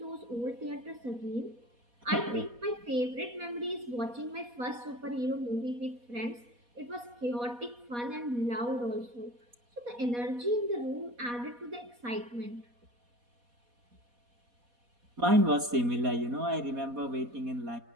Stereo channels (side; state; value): left; late; 4.2 ms